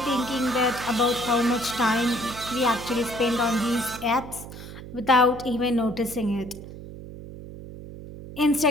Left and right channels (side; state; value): right; noise; hum, 13 dB below the sound